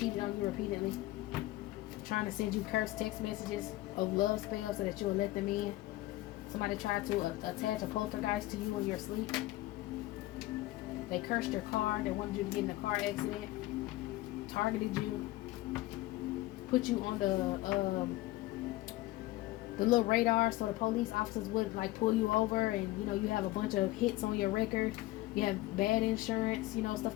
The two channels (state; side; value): quieter; right; 17.9 dB